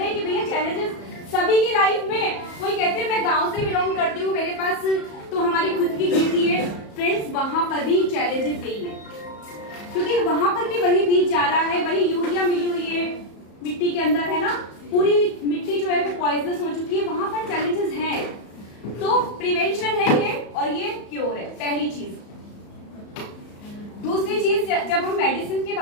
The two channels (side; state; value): right; late; 34 ms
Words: कि भैया चैलेंजेस सभी की लाइफ में। कोई कहते हैं मैं गांव से बिलोंग करती हूँ, मेरे पास तो हमारी खुद की खेती है। फ्रेंड्स, वहां पर भी चैलेंजेस यही है, क्योंकि वहां पर भी वही बीज जा रहा है, वही यूरिया मिली हुई है मिट्टी के अंदर, है ना। पूरी मिट्टी जो है वो पॉइजनस हो चुकी है, वहां पर चैलेंजेस हैं। तो प्रिवेंशन है ये, और ये क्योर है, पहली चीज। दूसरी चीज, जब हम मेडिसिन के